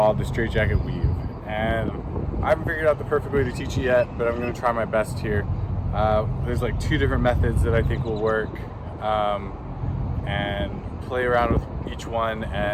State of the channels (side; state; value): both; identical; correlation 1.00